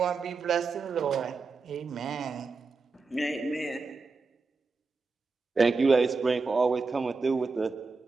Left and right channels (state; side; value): quieter; left; 4.3 dB